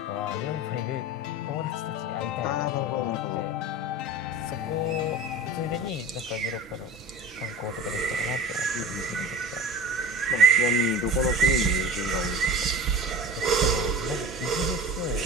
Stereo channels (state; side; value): normal; both; correlation 0.36